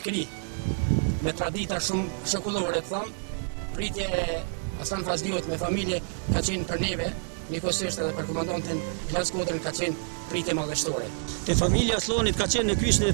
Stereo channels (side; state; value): left; silent; 59 dB below the other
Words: me tradita shumë shëkullore, të thëmë, pritje e Aslan Fazliut me familje ka qenë për neve, njëkohësisht edhe për komandantin Ilas Kodrën ka qenë pritje madhështore. Te familja Aslanit ka qenë në kyçne